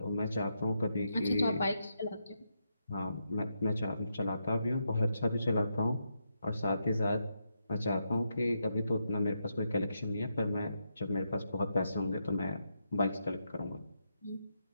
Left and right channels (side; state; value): both; inverted; correlation -0.82